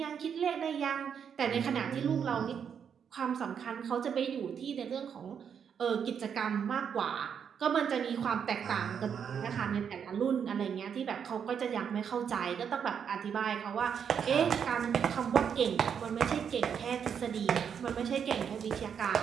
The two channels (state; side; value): quieter; left; 7.5 dB